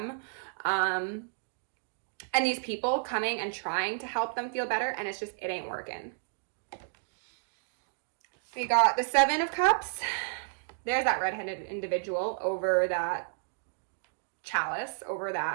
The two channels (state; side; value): silent; left; digital silence